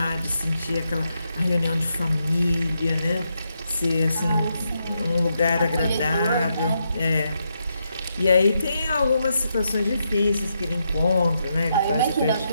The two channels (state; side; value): inverted; both; correlation -0.82